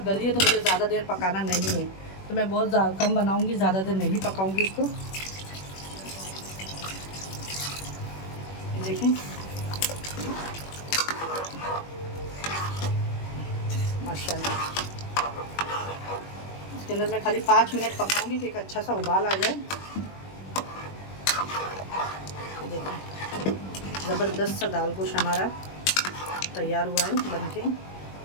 गली है तो मुझे ज़्यादा देर पकाना नहीं है, तो मैं बहुत कम बनाऊंगी, ज़्यादा देर नहीं पकाऊंगी इसको। ये देखें माशाल्लाह। इसके अंदर मैं खाली 5 मिनट पकाऊंगी कि एक अच्छा सा उबाल आ जाए। देखिए ज़बरदस्त सा दाल गोश्त हमारा तैयार हुआ है बनके।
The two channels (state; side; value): late; right; 21 ms